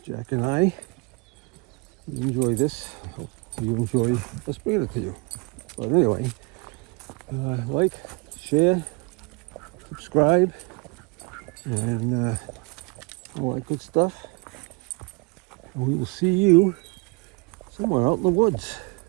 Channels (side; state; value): left; quieter; 30.1 dB